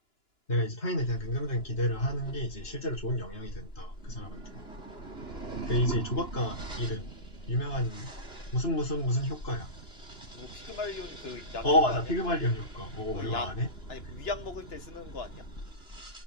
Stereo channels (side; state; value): right; late; 2.9 ms